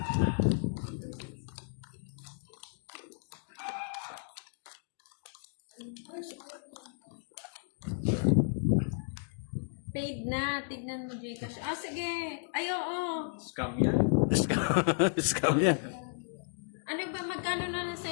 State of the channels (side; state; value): right; silent; digital silence